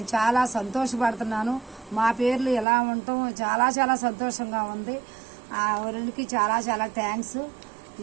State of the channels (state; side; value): drops out; left; at 2.7 s